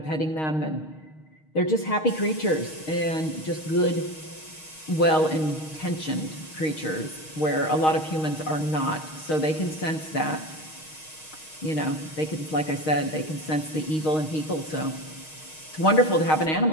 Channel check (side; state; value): right; late; 6.4 ms